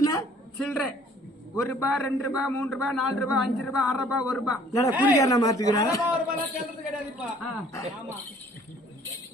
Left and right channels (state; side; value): normal; both; correlation 0.56